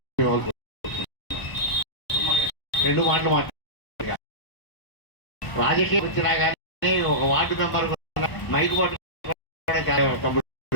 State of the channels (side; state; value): right; late; 1.0 ms